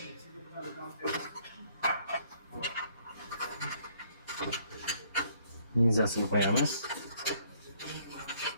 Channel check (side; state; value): both; inverted; correlation -0.65